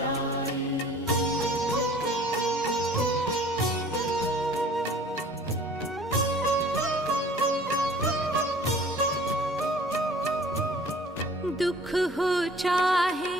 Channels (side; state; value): both; normal; correlation 0.50